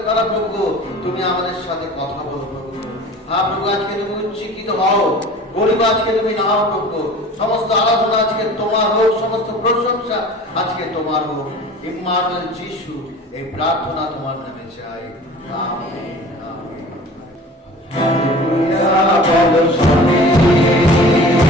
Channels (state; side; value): normal; both; correlation 0.42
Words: দ্বারা প্রভু তুমি আমাদের সাথে কথা বলো প্রভু। হ্যাঁ প্রভু, আজকে তুমি উচ্চকিত হও, গরিব আজকে তুমি নাও প্রভু। সমস্ত আরাধনা আজকে তোমার হোক, সমস্ত প্রশংসা আজকে তোমার হোক। ইম্মানুয়েল যিশু এই প্রার্থনা তোমার নামে চাই, আমেন, আমেন। হালেলুয়া বলো শুনি